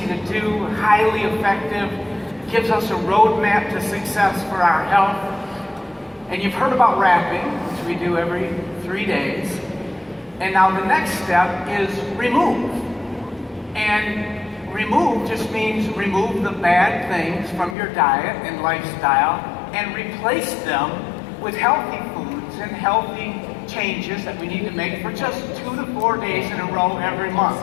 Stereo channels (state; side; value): drops out; right; at 17.8 s